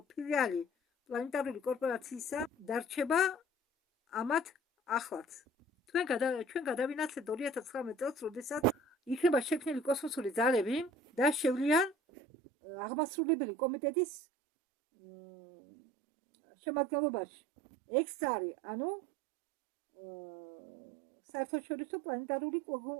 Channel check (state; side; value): drops out; left; at 12.0 s